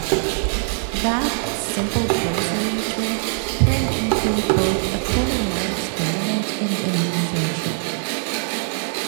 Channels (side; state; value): left; silent; digital silence